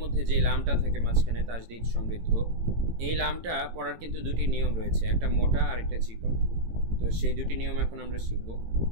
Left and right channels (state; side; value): late; left; 18 ms